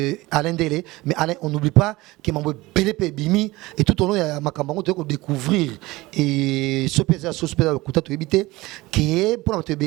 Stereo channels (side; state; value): left; quieter; 20.1 dB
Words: Alain Délé. Mais Alain, on n'oublie pas qu'il m'a envoyé BLP Bimi et tout au long, il y a Makambango de découvrir et ce pays, ce pays, le coup de éviter qui est pour notre